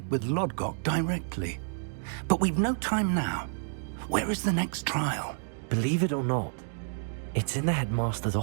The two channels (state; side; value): silent; left; digital silence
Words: with Lodgok directly. But we've no time now. Where is the next trial? Believe it or not, it's in the headmaster's